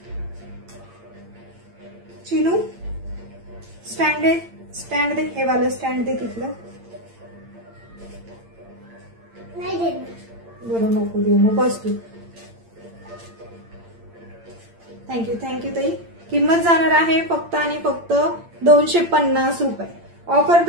चिनू स्टँड दे. स्टँड दे. हे वाला स्टँड दे तिथलं. नाही देत. बरं नको देऊ मग बस तू. थँक्यू थँक्यू ताई. किंमत जाणार आहे फक्त आणि फक्त 250 रुपये. ऑफर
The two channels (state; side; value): late; left; 8.8 ms